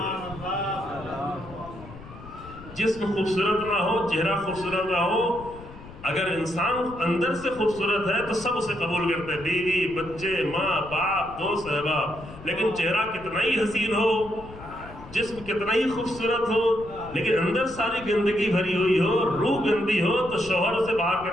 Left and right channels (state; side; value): noise; left; rumble, 17 dB below the sound